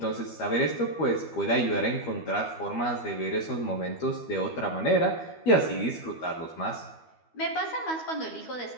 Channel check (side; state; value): right; late; 12 ms